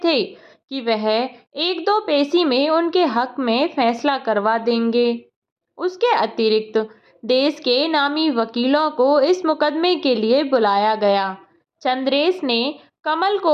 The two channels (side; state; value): both; identical; correlation 1.00